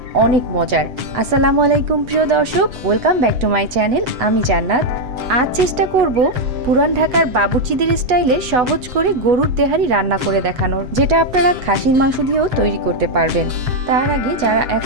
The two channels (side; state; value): left; late; 8.1 ms